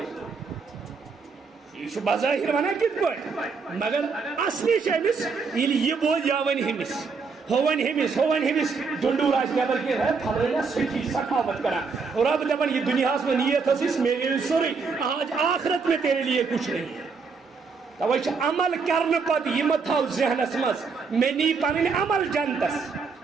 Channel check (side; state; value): left; quieter; 5.0 dB